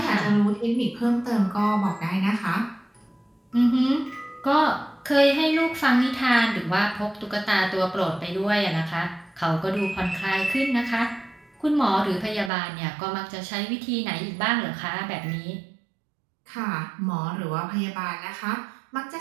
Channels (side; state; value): left; drops out; at 12.5 s